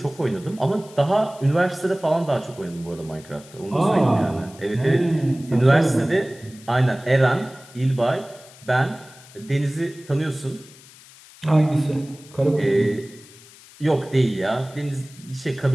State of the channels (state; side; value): noise; left; hiss, 22 dB below the sound